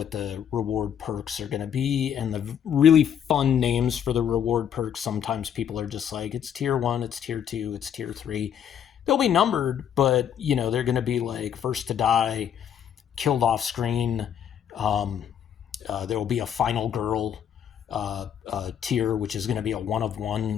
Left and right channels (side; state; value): right; quieter; 8.9 dB